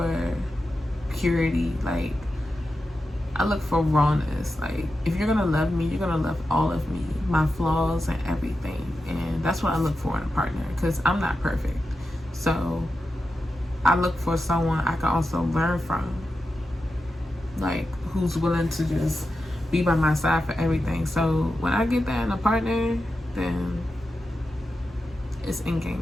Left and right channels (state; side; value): normal; both; correlation 0.90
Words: purity. Like, I look for rawness. Like, if you're gonna love me, you're gonna love all of me, my flaws and everything. And that's what I look for in a partner, because I'm not perfect. So I look for someone I can also learn from, like, who's willing to just be by my side for everything. So when I get that in a partner, then it's in